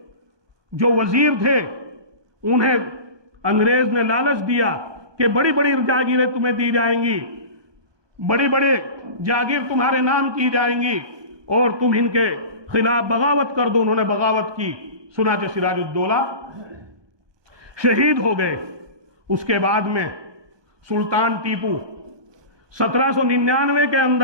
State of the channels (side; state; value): left; late; 1.2 ms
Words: جو وزیر تھے انہیں انگریز نے لالچ دیا کہ بڑی بڑی جاگیریں تمہیں دی جائیں گی، بڑی بڑے جاگیر تمہارے نام کی جائیں گی اور تم ان کے خلاف بغاوت کر دو۔ انہوں نے بغاوت کی، چنانچہ سراج الدولہ شہید ہو گئے۔ اس کے بعد میں سلطان ٹیپو 1799 کے